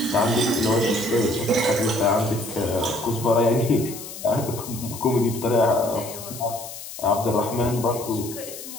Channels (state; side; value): noise; left; hiss, 12 dB below the sound